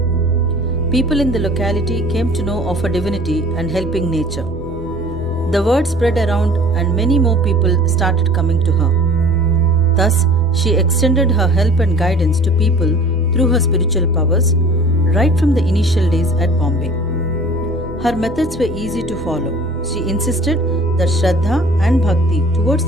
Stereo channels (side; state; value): both; normal; correlation 0.46